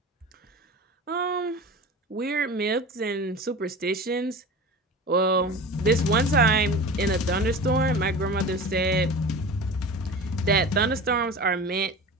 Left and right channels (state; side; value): normal; both; correlation 0.34